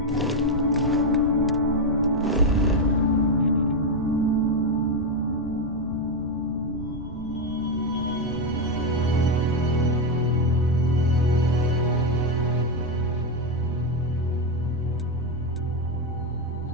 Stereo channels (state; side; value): normal; both; correlation 0.06